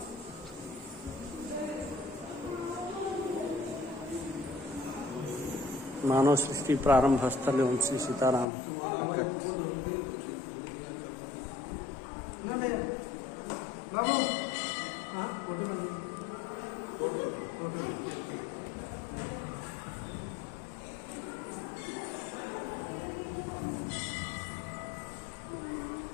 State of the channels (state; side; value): drops out; right; at 8.5 s